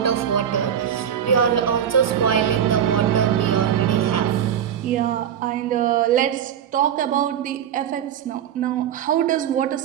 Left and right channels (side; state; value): left; quieter; 9.2 dB